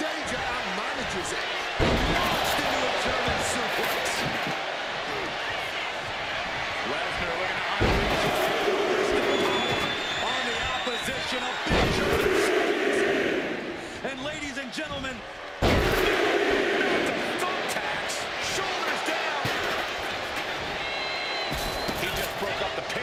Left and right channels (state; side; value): identical; both; correlation 1.00